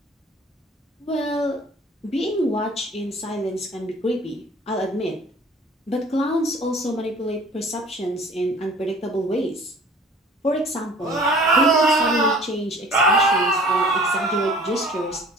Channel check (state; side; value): normal; both; correlation 0.49